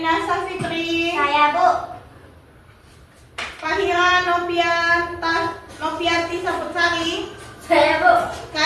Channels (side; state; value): both; identical; correlation 1.00